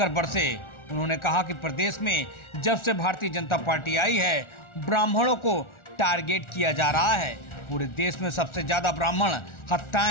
बरसे। उन्होंने कहा कि प्रदेश में जब से भारतीय जनता पार्टी आई है, ब्राह्मणों को टारगेट किया जा रहा है। पूरे देश में सबसे ज्यादा ब्राह्मण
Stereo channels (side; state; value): right; late; 1.4 ms